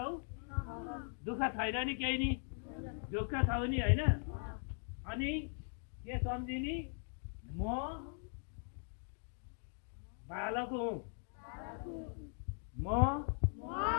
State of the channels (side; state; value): right; silent; 51 dB below the other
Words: दुःख छैन नि केही नि, ढुक्क छौ नि होइन? अनि के सम्झिनी? म बालक हुँ, म